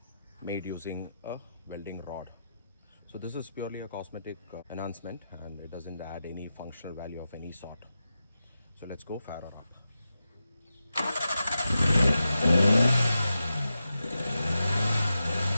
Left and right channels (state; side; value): inverted; both; correlation -0.90